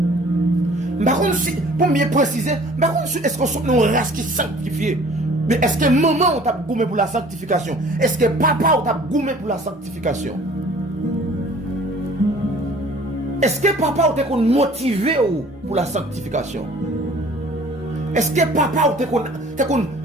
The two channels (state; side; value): normal; both; correlation 0.51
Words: Par contre, pour mieux préciser, par contre, est-ce qu'on est une race qui est sanctifiée? Mais est-ce que maman t'a gommé pour la sanctification? Est-ce que papa t'a gommé pour la sanctification? Est-ce que papa t'a motivé pour la sanctification? Est-ce que papa t'a